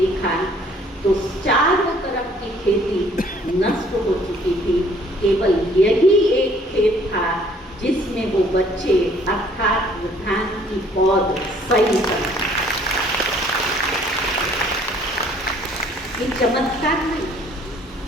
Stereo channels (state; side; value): normal; both; correlation 0.59